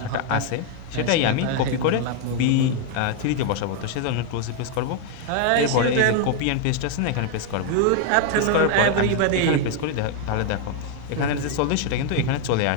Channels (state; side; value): different; both; correlation 0.00